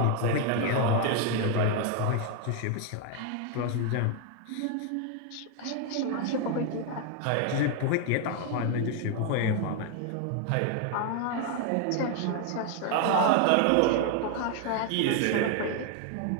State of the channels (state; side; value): different; both; correlation 0.01